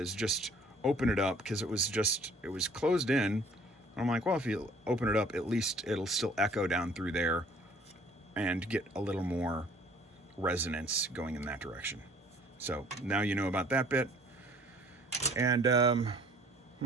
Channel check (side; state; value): both; normal; correlation 0.55